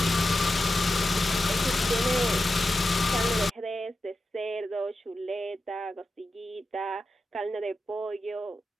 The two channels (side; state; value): both; normal; correlation 0.90